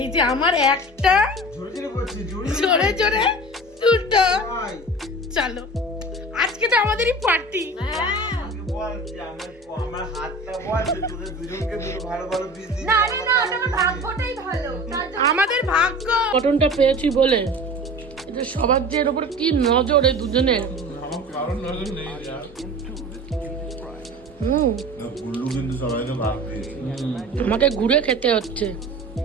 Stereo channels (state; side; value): normal; both; correlation 0.37